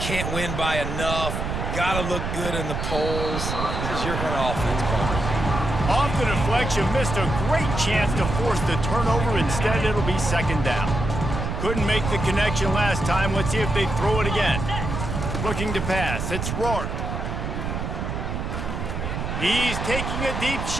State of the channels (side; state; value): right; noise; rumble, 3 dB below the sound